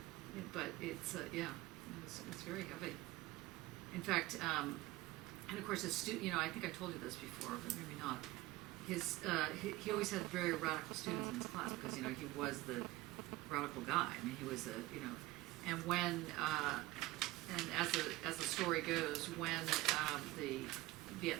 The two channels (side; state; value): left; quieter; 18.5 dB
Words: Yeah, but it's, yeah, it's very heavy. In fact, and of course, you know, I think I told you this before, but maybe not. He always had very radical students in his class because, you know, he was the radical guy. I mean, he was you know, and when, and as the story goes, when the